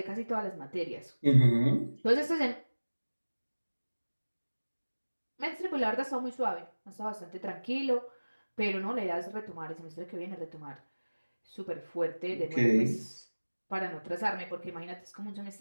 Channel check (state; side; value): inverted; both; correlation -1.00